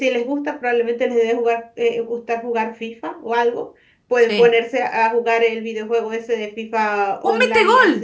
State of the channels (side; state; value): both; identical; correlation 1.00